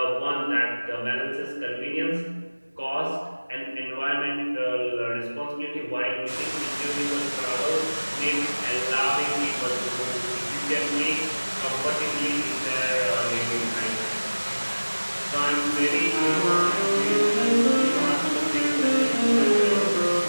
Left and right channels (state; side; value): inverted; both; correlation -1.00